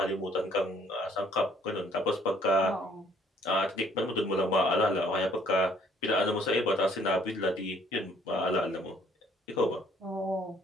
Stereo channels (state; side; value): normal; both; correlation 0.61